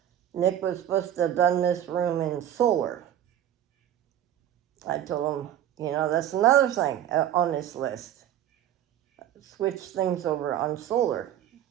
Nick was supposed to have done this room in solar. I told him, that's another thing on this list. Switch things over on solar.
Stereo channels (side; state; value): left; quieter; 11.1 dB